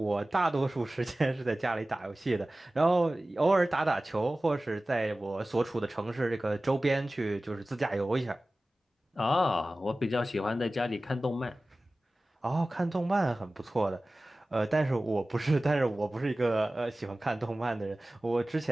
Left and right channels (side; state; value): both; normal; correlation 0.97